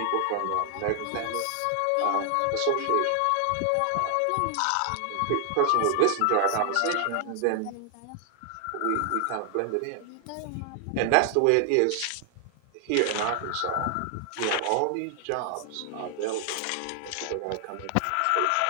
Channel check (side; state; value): both; different; correlation 0.00